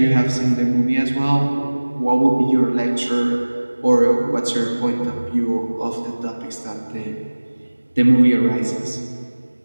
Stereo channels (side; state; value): both; inverted; correlation -1.00